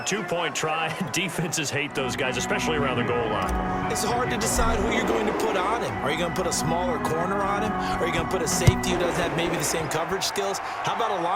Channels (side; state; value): both; identical; correlation 1.00